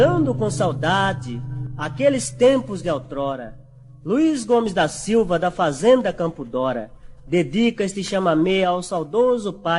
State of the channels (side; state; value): both; identical; correlation 1.00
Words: com saudade aqueles tempos de outrora, Luiz Gomes da Silva, da Fazenda Campo Dora, dedica este chamamé ao saudoso